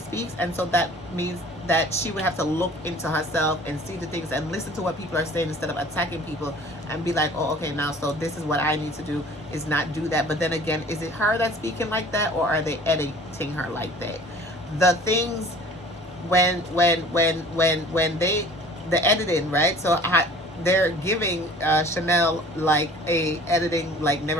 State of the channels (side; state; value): both; normal; correlation 0.47